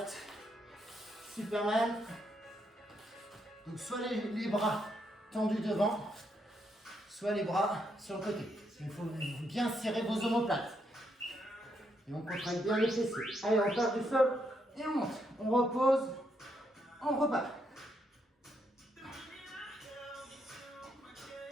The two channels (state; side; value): normal; both; correlation 0.78